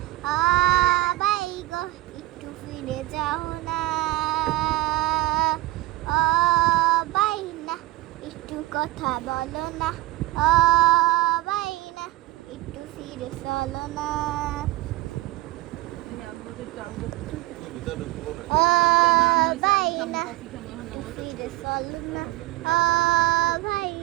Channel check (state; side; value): quieter; left; 18.5 dB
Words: ও ভাই গো একটু ফিরে যাও না, ও ভাই না একটু কথা বলো না, ও ভাই না একটু ফিরে চলো না, ও ভাই না একটু ফিরে চলো না, ও ভাই